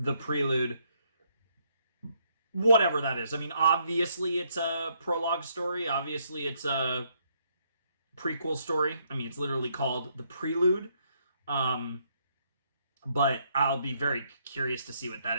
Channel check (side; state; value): both; inverted; correlation -0.72